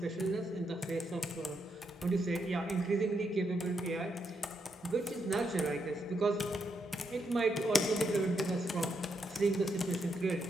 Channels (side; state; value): both; normal; correlation 0.80